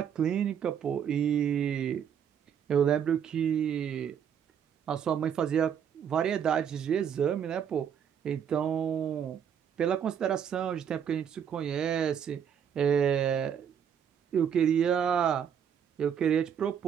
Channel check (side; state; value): left; quieter; 8.3 dB